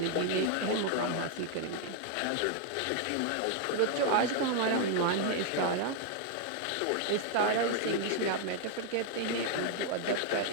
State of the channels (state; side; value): different; both; correlation 0.00